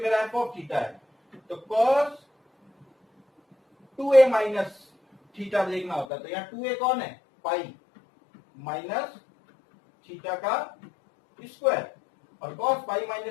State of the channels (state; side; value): drops out; right; at 6.1 s